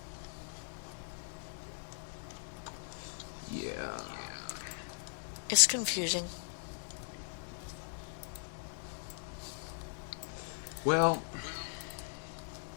It's confusing. Well,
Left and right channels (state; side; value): silent; right; digital silence